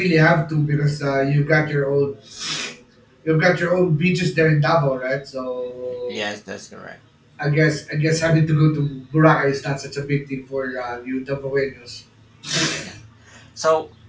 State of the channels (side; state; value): both; identical; correlation 1.00